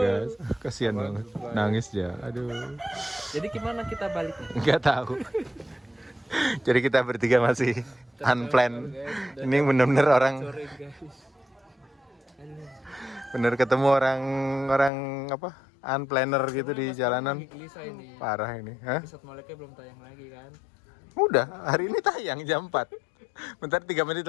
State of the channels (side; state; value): right; drops out; at 14.9 s